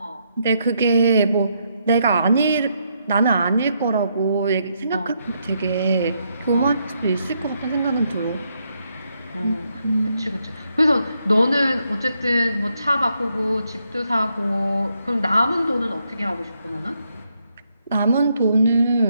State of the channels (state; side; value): inverted; both; correlation -0.78